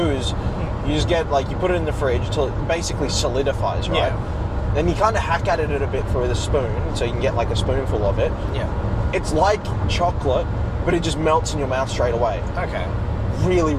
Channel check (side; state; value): both; identical; correlation 1.00